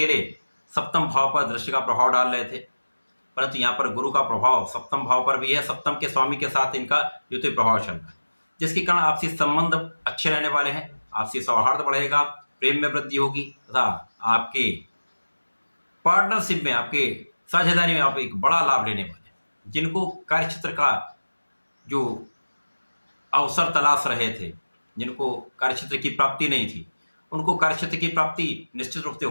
सप्तम भाव पर दृष्टि का प्रभाव डाल रहे थे, परंतु यहाँ पर गुरु का प्रभाव सप्तम भाव पर भी है। सप्तम के स्वामी के साथ इनका द्वितीय प्रभाव चल रहा है, जिसके कारण आपसी संबंध अच्छे रहने वाले हैं, आपसी सौहार्द बढ़ेगा, प्रेम में वृद्धि होगी तथा आपके पार्टनरशिप में, आपके साझेदारी में आप एक बड़ा लाभ लेने वाले हैं। जिनको कार्यक्षेत्र का जो अवसर तलाश रहे थे, जिनको कार्यक्षेत्र की प्राप्ति नहीं थी, उनको कार्यक्षेत्र की प्राप्ति निश्चित रूप से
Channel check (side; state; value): both; inverted; correlation -1.00